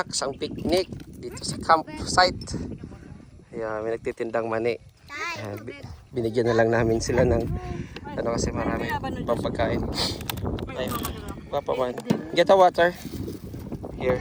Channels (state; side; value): identical; both; correlation 1.00